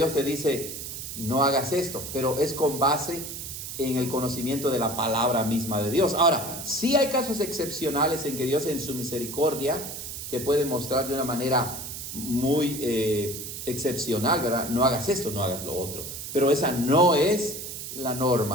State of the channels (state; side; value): noise; right; hiss, 8 dB below the sound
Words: te dice, no hagas esto, pero es con base en el conocimiento de la palabra misma de Dios. Ahora, sí hay casos excepcionales en que Dios en su misericordia te puede mostrar de una manera muy excepcional, ¿verdad? No hagas esto, no hagas lo otro. Pero esa no es la